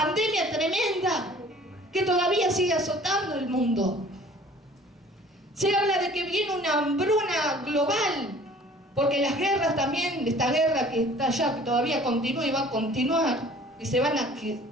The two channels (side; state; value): both; normal; correlation 0.50